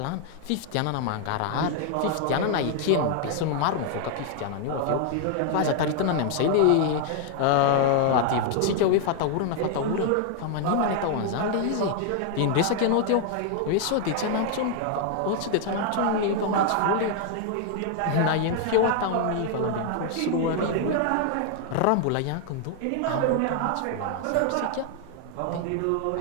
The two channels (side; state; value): both; different; correlation 0.00